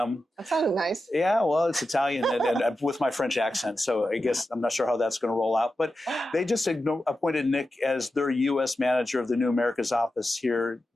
That sounded nice. Yeah, well, it's Italian and with my French accent, so I guess I'm not sure how that's going to roll out. But they just appointed Nick as their U.S. manager of the New Americas office here,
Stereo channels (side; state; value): both; normal; correlation 0.91